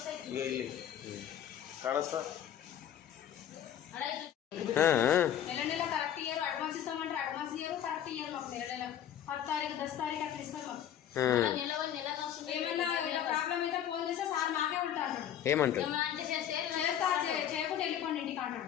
ಈಗ ಇಲ್ಲಿ ಕಾಣಿಸ್ತ ఏమంటారు? చేయకుండా వెళ్ళిపోండి ఇంటికి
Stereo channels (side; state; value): right; quieter; 10.2 dB